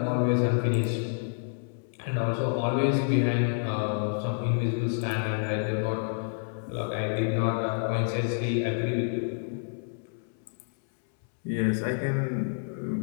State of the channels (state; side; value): silent; right; 59 dB below the other